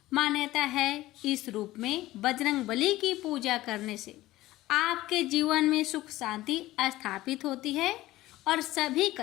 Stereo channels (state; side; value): quieter; right; 16.8 dB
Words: मान्यता है इस रूप में बजरंगबली की पूजा करने से आपके जीवन में सुख शांति स्थापित होती है और सभी